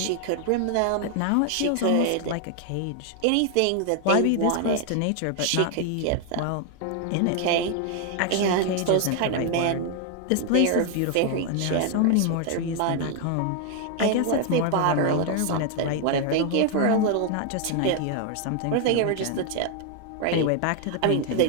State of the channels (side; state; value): both; different; correlation 0.00